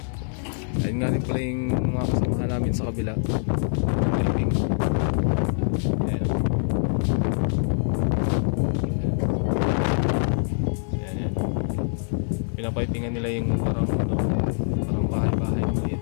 Ayun nga rin pala yung mga kasamahan namin sa kabila. Helping. Ayan. pinapipingan nila yung parang ano, parang bahay-bahay maliit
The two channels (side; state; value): right; silent; digital silence